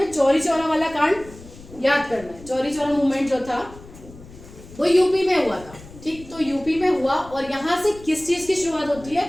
चौरी चौरा वाला कांड याद करना है। चौरी चौरा मूवमेंट जो था वो यूपी में हुआ था। ठीक, तो यूपी में हुआ, और यहाँ से किस चीज की शुरुआत होती है,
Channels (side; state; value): left; noise; rumble, 19 dB below the sound